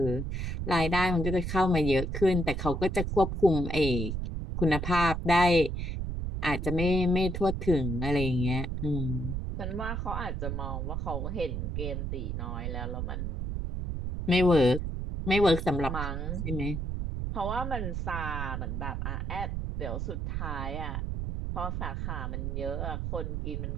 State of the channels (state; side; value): noise; right; rumble, 3 dB below the sound